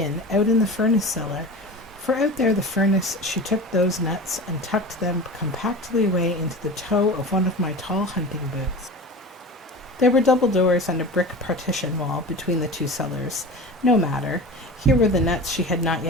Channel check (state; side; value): normal; both; correlation 0.33